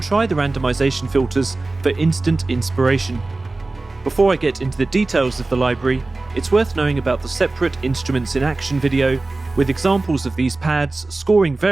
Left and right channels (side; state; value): left; quieter; 3.2 dB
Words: try the randomization filters for instant inspiration. Before I get into the details of the library, it's worth knowing about the separate Instruments in Action video, with examples of these pads scoring